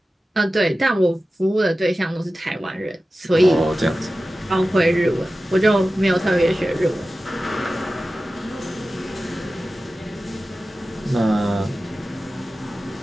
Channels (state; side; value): normal; both; correlation 0.95